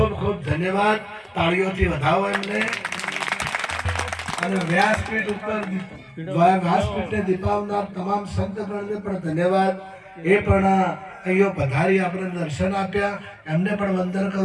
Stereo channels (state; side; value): identical; both; correlation 1.00